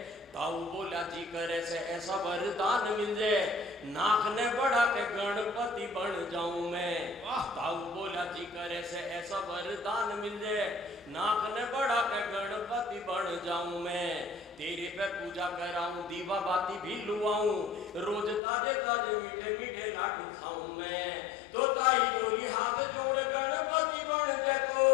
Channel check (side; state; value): right; drops out; at 18.4 s